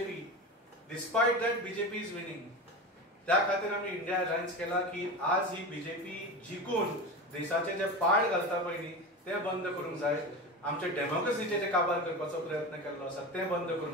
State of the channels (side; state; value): both; normal; correlation 0.26